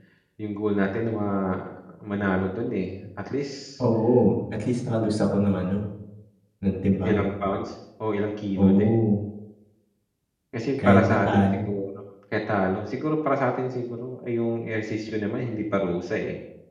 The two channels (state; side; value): identical; both; correlation 1.00